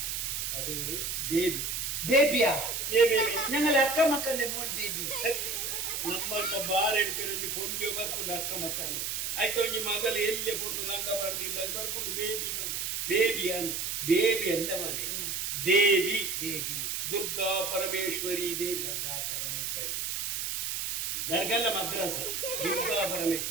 അത് ബേബി ಬೇಬಿಯಾ ഏ ബേബി ഞങ്ങൾ അക്ക മക്കന്റെ മോൻ ಬೇಬಿ ನಮ್ಮಂತ ಬಾರ್ ಹಿಡ್ಕೊಂಡು ಪೊಂಜಿ ಬರ್ಕೊಂಡು ಅಕ್ಕ ಮಕ್ಕಂದು ಆಯ್ತು ಒಂಜಿ ಮಗಲು ಎಲ್ಲೆ ಪೊಂಡು ಲಂಗ ಬಾರ್ದಿಲ್ಲ ಬರ್ಕೊಂಡು ಬೇಬಿ ಬಂದು ಬೇಬಿ ಅಂದ್ ಬೇಬಿ ಅಲ್ಲ ಮನೆ ದೇವಿ ದೇವಿ ದುರ್ಗಾ ಪರಮೇಶ್ವರಿ ದೇವಿ ಗಂಗಾ ಪರಮೇಶ್ವರಿ ದರ್ಗಲ್ಲ ಮದ್ರಾಸ ದುರ್ಗಾ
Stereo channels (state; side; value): noise; right; hiss, 2 dB below the sound